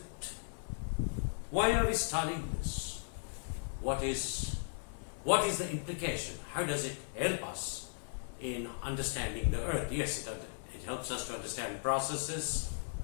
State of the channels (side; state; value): right; silent; 53 dB below the other